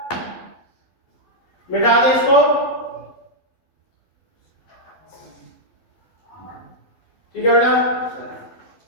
मिटा दे इसको। ठीक है बेटा,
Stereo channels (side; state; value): right; late; 12 ms